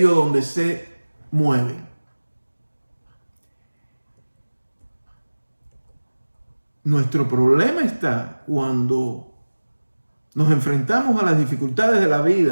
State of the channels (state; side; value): inverted; both; correlation -1.00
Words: donde se mueven. Nuestro problema está cuando nos enfrentamos a las dificultades de la